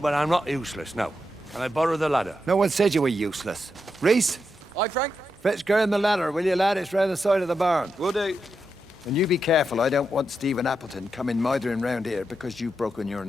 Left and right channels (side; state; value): both; normal; correlation 0.85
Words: but I'm not useless, no. Can I borrow the ladder? No one said you were useless. Reese? Aye, Frank? Fetch Graham the ladder, will you, lad? It's round the side of the barn. Will do. And you be careful. I don't want Stephen Appleton coming mithering round here because you've broken your